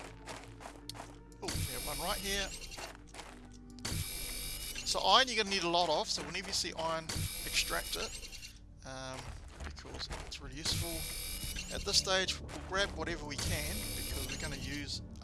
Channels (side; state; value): both; identical; correlation 1.00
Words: Oh, we have one right here. So iron you're going to need a lot of, so whenever you see iron, extract it, because it's really useful. At this stage, we'll grab whatever we can, because we're going to use